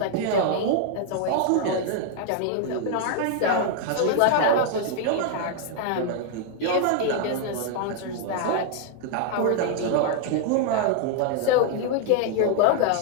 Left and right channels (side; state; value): both; different; correlation 0.00